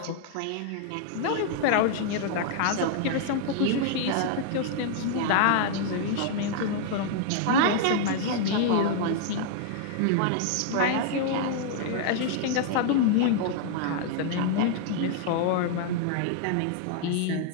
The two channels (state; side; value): different; both; correlation -0.01